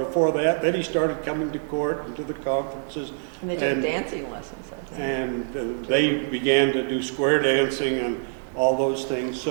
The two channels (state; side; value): silent; left; 60 dB below the other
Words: that. Then he started coming to court and to the conferences. And they took dancing lessons, I think. And they began to do square dancing and all those things.